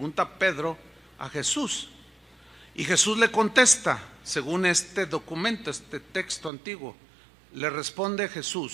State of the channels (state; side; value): drops out; left; at 6.5 s